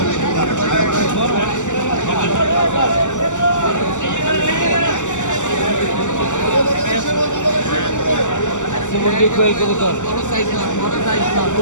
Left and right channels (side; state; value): right; late; 0.85 ms